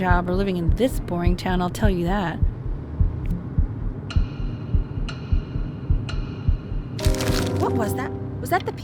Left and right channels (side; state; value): both; identical; correlation 1.00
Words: or living in this boring town, I'll tell you that. What was that? Was that the